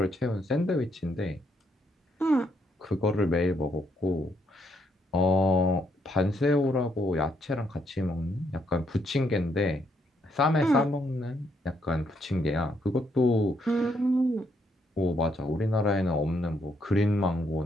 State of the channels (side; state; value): both; normal; correlation 0.74